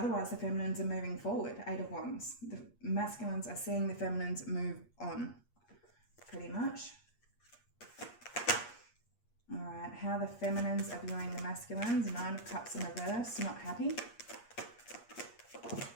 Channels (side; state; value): right; late; 8.5 ms